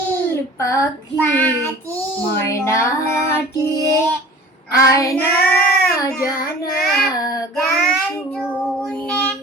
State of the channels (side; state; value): both; normal; correlation 0.43